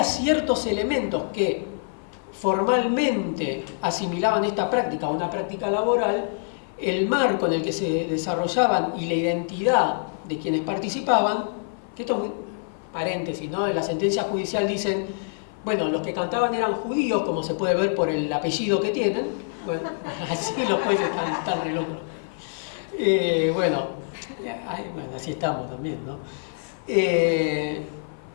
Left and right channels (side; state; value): right; silent; 56 dB below the other